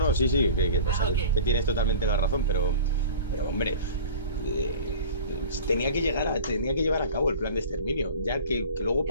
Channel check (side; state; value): both; inverted; correlation -0.40